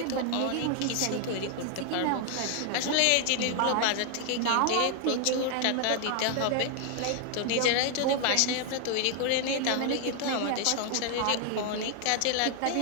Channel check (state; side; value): different; both; correlation 0.00